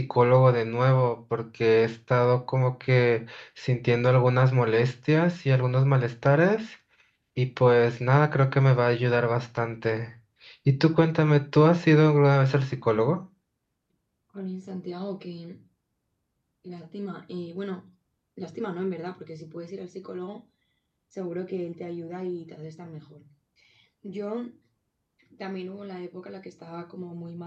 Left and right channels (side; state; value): both; identical; correlation 1.00